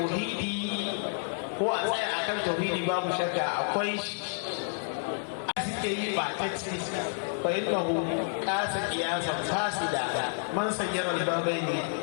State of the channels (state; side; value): silent; right; digital silence